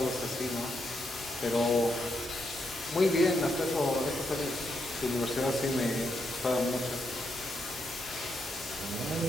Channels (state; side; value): normal; both; correlation 0.80